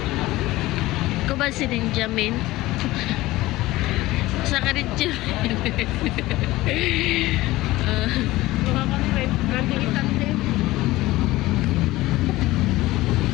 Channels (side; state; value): right; quieter; 18.1 dB